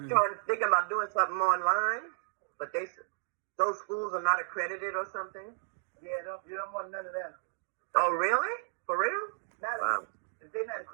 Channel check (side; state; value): left; silent; digital silence